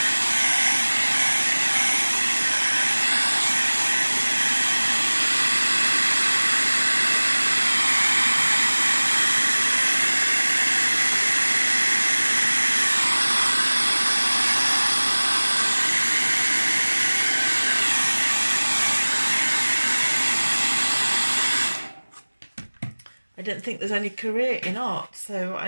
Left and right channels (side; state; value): both; inverted; correlation -1.00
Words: I didn't think there's any career in art, so